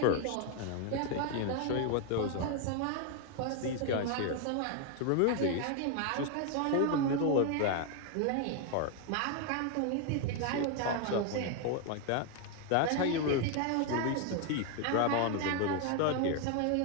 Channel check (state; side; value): different; both; correlation 0.01